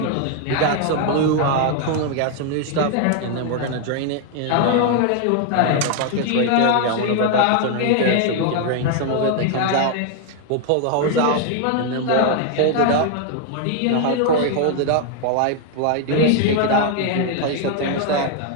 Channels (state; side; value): different; both; correlation 0.00